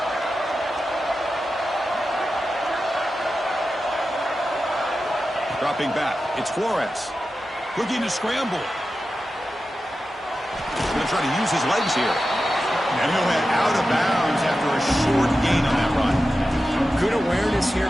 Dropping back. It's Flores. Looking to scramble. He's going to try to use his legs here. And he'll head out of bounds after a short gain on that run. Good awareness here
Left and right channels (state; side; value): normal; both; correlation 0.92